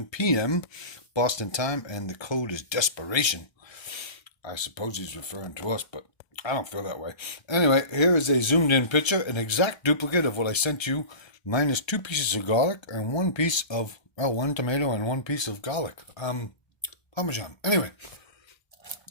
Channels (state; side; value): late; right; 1.3 ms